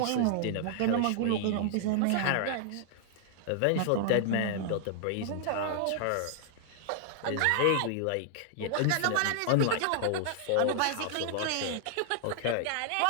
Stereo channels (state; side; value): different; both; correlation -0.01